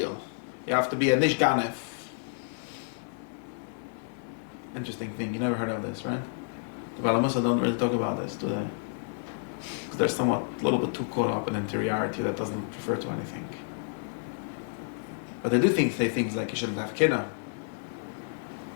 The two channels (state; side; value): silent; right; 58 dB below the other